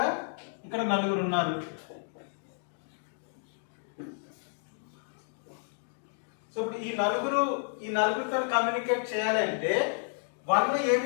నలుగురు ఉన్నారు. సో ఇప్పుడు ఈ నలుగురితో కమ్యూనికేట్ చేయాలి అంటే 1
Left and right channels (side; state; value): right; silent; digital silence